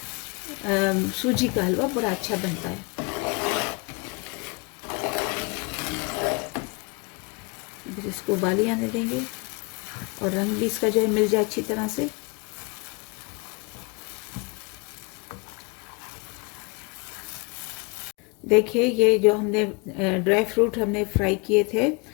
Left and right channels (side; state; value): right; quieter; 29.9 dB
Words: सूजी का हलवा बड़ा अच्छा बनता है। बस इसको उबाली आने देंगे और रंग भी इसका जो है मिल जाए अच्छी तरह से। देखिए, ये जो हमने ड्राई फ्रूट हमने फ्राई किए थे,